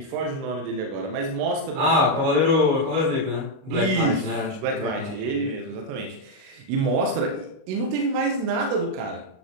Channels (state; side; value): late; left; 38 ms